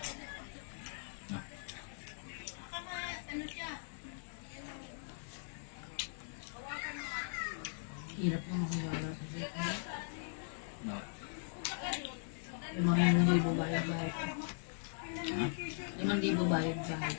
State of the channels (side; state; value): right; silent; digital silence